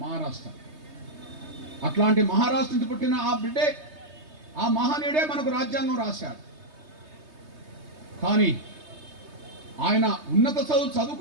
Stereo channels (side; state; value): left; late; 3.2 ms